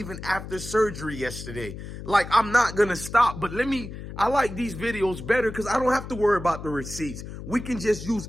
after surgery yesterday. Like, I'm not going to stop. But I like these videos better because I don't have to worry about the receipts. We can just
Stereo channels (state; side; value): noise; left; hum, 10 dB below the sound